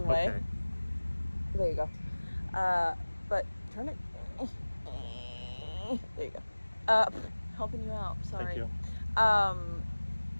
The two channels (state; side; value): inverted; both; correlation -1.00